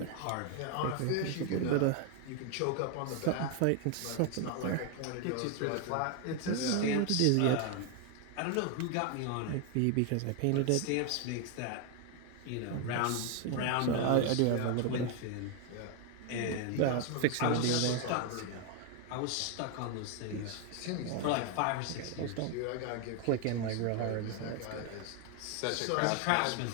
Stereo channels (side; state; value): both; different; correlation 0.01